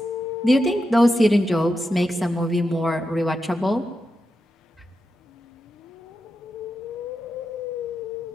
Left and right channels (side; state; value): both; normal; correlation 0.88